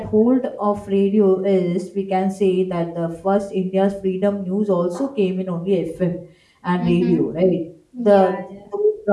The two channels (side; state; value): both; identical; correlation 1.00